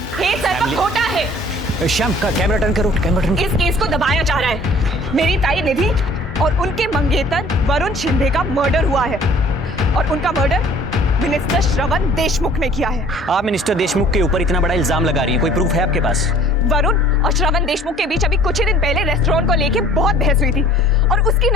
खोटा है। श्याम का कैमरा टर्न करो, कैमरा टर्न। इस केस को दबाया जा रहा है। मेरी ताई निधि और उनके मंगेतर वरुण शिंदे का मर्डर हुआ है और उनका मर्डर मिनिस्टर श्रवण देशमुख ने किया है। आप मिनिस्टर देशमुख के ऊपर इतना बड़ा इल्जाम लगा रही हैं, कोई प्रूफ है आपके पास? वरुण और श्रवण देशमुख के बीच अभी कुछ ही दिन पहले रेस्टोरेंट को लेके बहुत बहस हुई थी और उसकी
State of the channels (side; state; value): both; normal; correlation 0.52